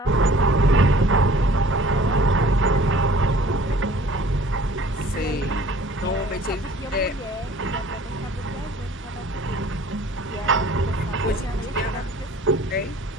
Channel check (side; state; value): both; normal; correlation 0.51